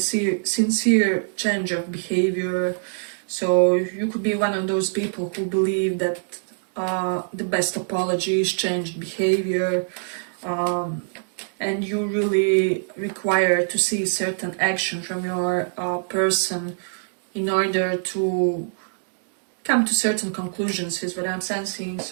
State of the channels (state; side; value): silent; left; digital silence